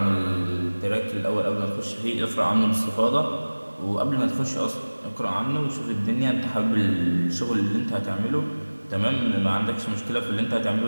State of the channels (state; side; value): inverted; both; correlation -1.00